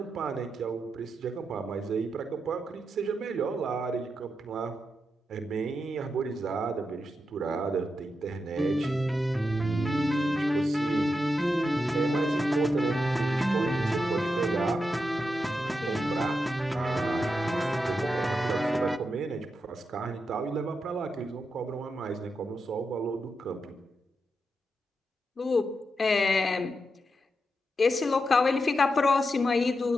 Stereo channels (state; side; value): normal; both; correlation 0.86